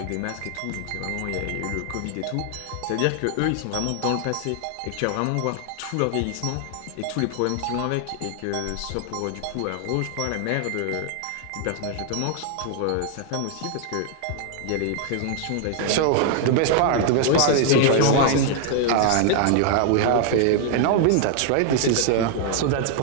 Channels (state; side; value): different; both; correlation 0.00